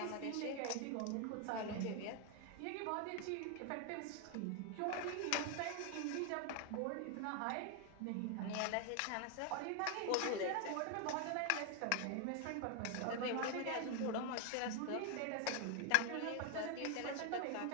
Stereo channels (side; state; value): both; different; correlation 0.01